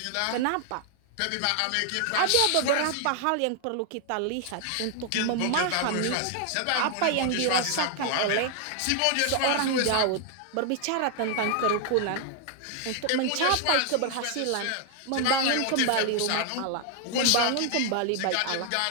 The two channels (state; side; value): different; both; correlation 0.00